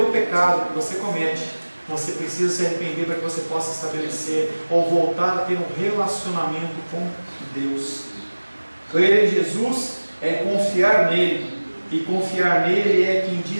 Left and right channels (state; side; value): inverted; both; correlation -1.00